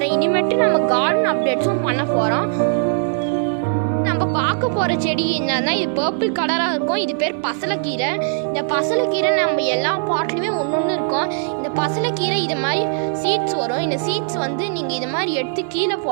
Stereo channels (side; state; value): left; silent; digital silence